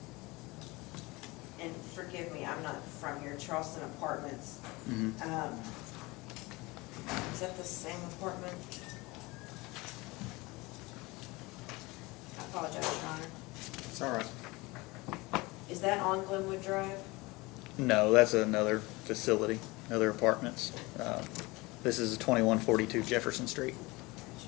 Charleston Apartments. Mhm. Is that the same apartment? I apologize, Your Honor. It's all right. Is that on Glenwood Drive? No, that's another facility, other apartments. This is 2142 Jefferson Street.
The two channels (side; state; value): right; quieter; 23.2 dB